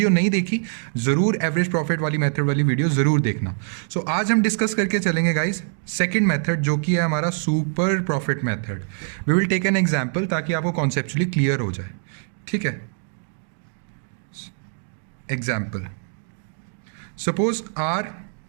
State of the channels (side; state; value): left; silent; 58 dB below the other